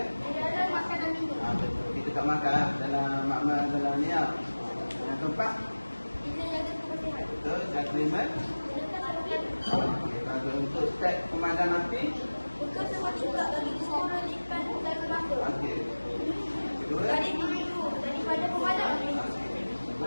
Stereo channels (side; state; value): both; inverted; correlation -1.00